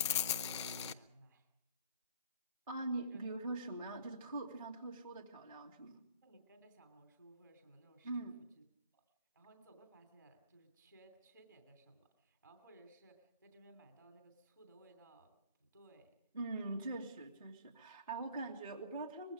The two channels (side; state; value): both; inverted; correlation -0.48